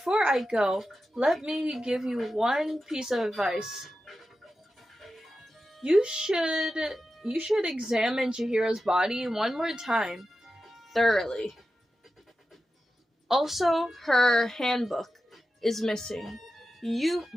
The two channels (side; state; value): both; normal; correlation 0.92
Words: I go, let me give you one piece of advice. You should examine Chihiro's body one more time, thoroughly. Also, her handbook is missing. You